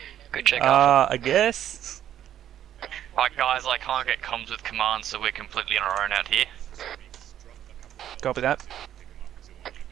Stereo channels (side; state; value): left; quieter; 11.0 dB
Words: Good check out. I guess. Alright guys, I can't get comms with command, so we're completely on our own out here. Copy that.